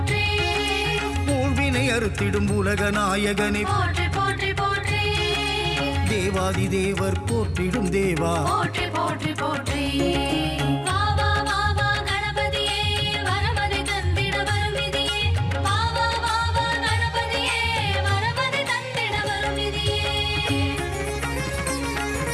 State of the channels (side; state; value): both; identical; correlation 1.00